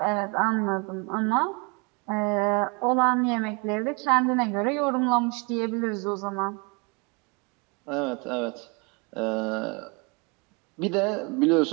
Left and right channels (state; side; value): quieter; left; 30.6 dB